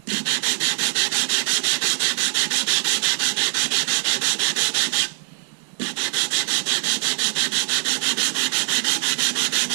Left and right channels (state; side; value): silent; left; digital silence